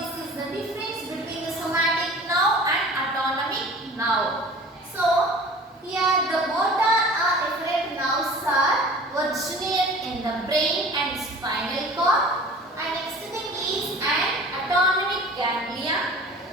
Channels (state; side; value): normal; both; correlation 0.43